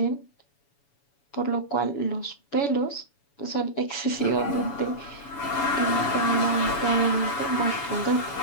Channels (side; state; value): right; late; 7.0 ms